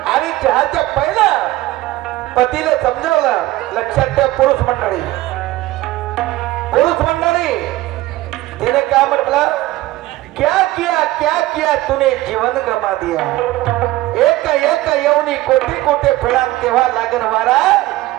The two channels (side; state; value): left; quieter; 17.3 dB